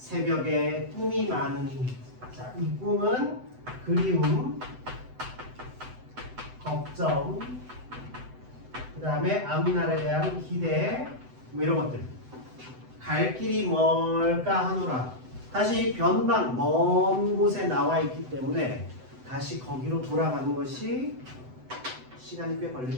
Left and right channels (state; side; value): late; left; 7.9 ms